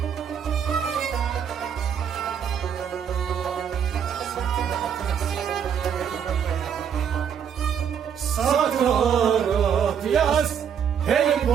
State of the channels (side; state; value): left; quieter; 8.0 dB